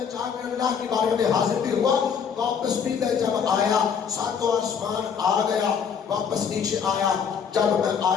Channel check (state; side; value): quieter; right; 6.9 dB